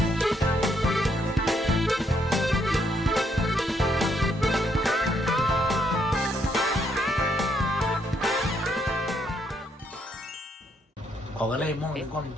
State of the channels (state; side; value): normal; both; correlation 0.73